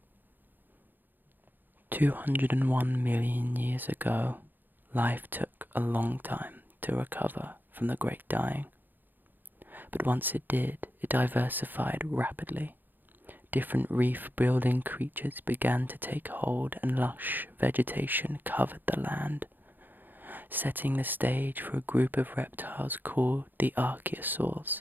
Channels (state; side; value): late; left; 0.089 ms